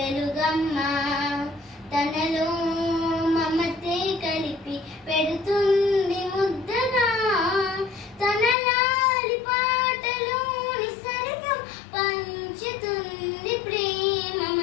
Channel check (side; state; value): right; drops out; at 8.6 s